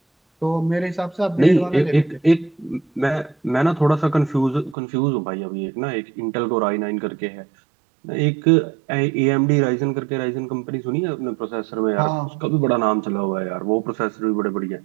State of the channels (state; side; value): drops out; left; at 4.8 s